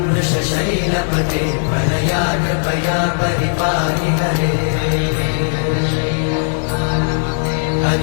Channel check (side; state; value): right; silent; 61 dB below the other